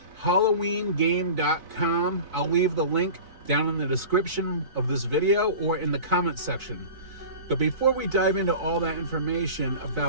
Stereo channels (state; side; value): late; left; 3.9 ms